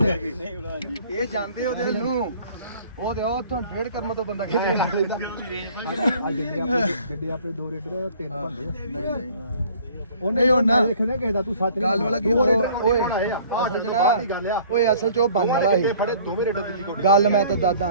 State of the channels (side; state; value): both; inverted; correlation -0.52